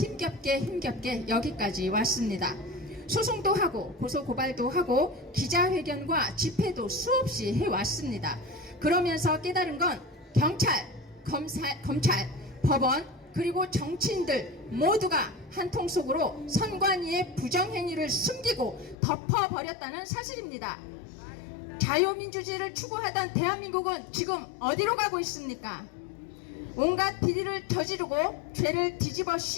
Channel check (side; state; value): right; drops out; at 18.9 s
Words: 여기까지 왔습니다. 소송도 하고 고소고발도 하고 기자회견과 집회도 수없이 해왔습니다. 그러면서 깨달은 건 경찰, 검찰, 법원 그리고 정치인들 모두가 한통 속으로 선관위의 부정행위를 숨기고 덮어버렸다는 사실입니다. 자유민주주의를 추구하던 대한민국은 지금 어디로 가고 있습니까? 온갖 비리를 저지르고 죄를 뒤집어